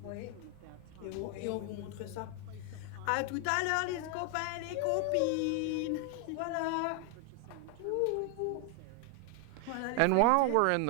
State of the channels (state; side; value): different; both; correlation 0.00